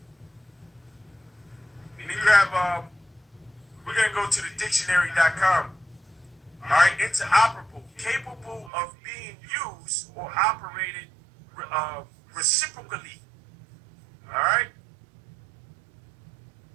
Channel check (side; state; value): left; drops out; at 8.7 s